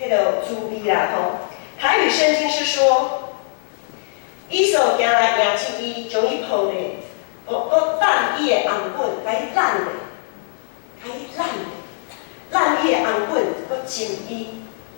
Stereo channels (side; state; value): right; silent; 65 dB below the other